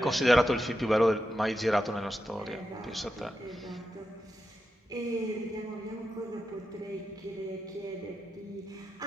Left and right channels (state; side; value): normal; both; correlation 0.88